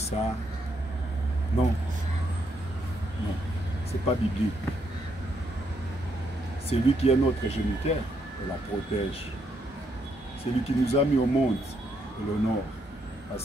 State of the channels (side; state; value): both; normal; correlation 0.76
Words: Non. Non. Ce n'est pas biblique. C'est lui qui est notre géniteur, on la protège. C'est lui qui nous a mis au monde, et l'honneur,